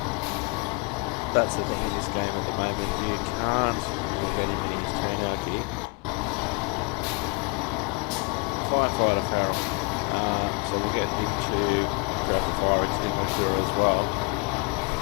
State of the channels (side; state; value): right; quieter; 29.9 dB